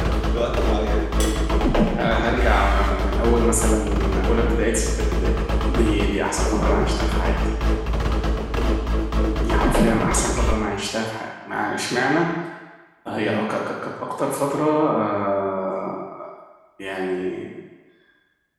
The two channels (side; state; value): both; identical; correlation 1.00